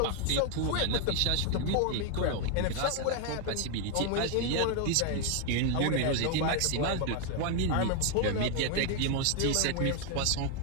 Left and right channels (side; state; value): both; different; correlation 0.01